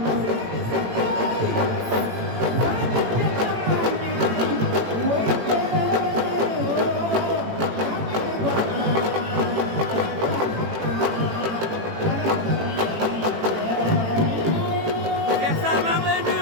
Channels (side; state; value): left; late; 18 ms